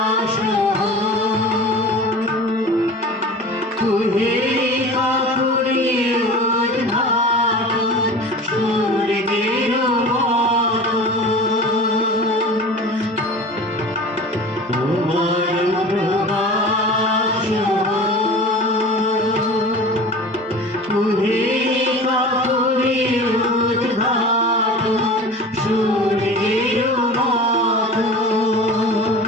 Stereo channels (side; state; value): both; normal; correlation 0.37